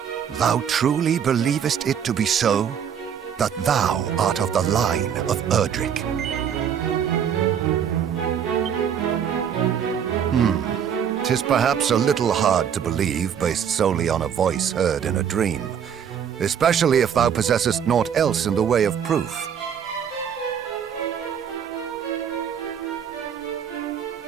Thou truly believest it to be so? That thou art of the line of Erdrick? 'Tis perhaps a little hard to believe based solely on a voice heard in a dream, especially if thou possessest naught else in the way of proof.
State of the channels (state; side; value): quieter; left; 8.2 dB